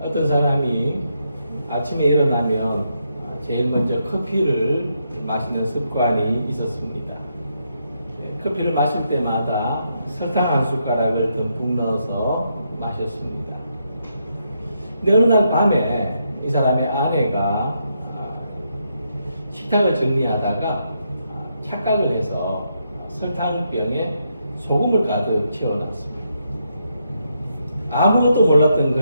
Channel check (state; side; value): inverted; both; correlation -0.79